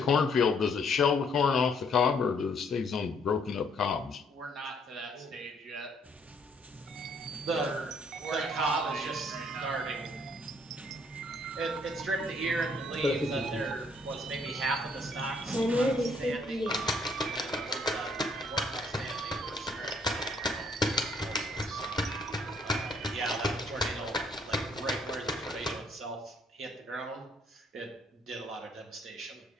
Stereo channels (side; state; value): both; normal; correlation 0.66